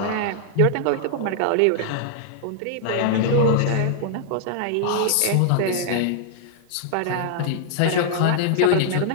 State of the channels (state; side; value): different; both; correlation -0.01